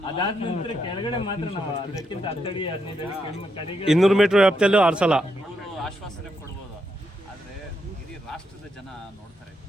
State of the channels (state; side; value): normal; both; correlation 0.80